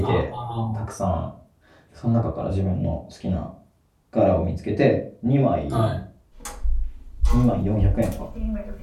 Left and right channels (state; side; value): identical; both; correlation 1.00